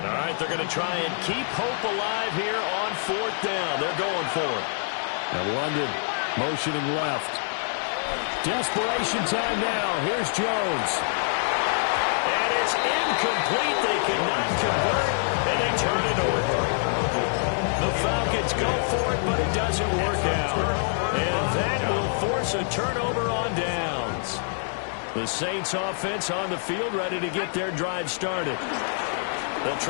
right, they're going to try and keep hope alive here on 4th down. They're going for it. And London motioning left. Desperation time now. Here's Jones. And it's incomplete. They cannot convert, and they turn it over. The Falcons go for it, but it doesn't work out. And that will force a turnover on downs. The Saints offense on the field, ready to get their drive started. They'll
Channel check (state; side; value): silent; right; digital silence